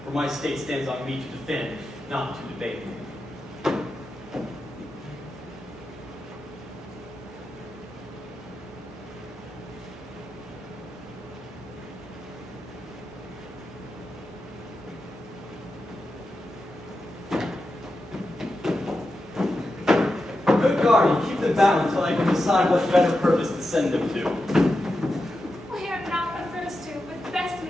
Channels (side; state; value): both; normal; correlation 0.89